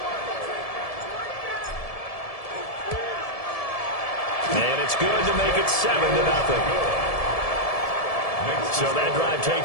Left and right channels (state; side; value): late; right; 1.7 ms